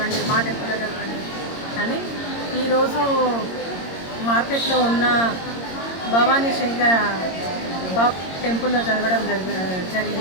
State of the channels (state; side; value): late; right; 22 ms